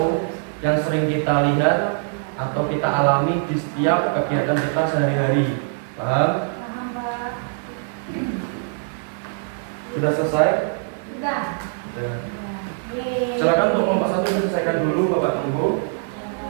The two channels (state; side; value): silent; left; 56 dB below the other